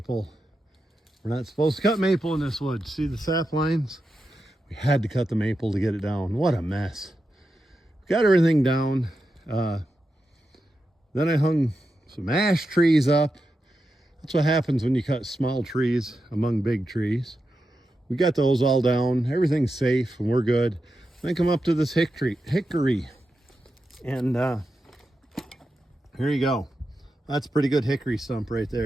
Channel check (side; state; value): both; normal; correlation 0.89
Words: We're not supposed to cut maple in this wood. See the sap lines? We had to cut the maple to get it down. What a mess. Got everything down. Then I hung some ash trees up. That's what happens when you cut small trees among big trees. We got those all down. Everything's safe and we're good. Then come up to this hickory. And here you go. That's a pretty good hickory stump right